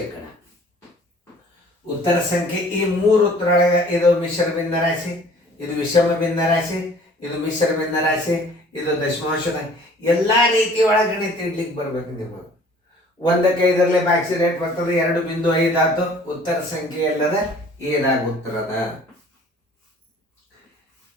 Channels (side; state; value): both; normal; correlation 0.52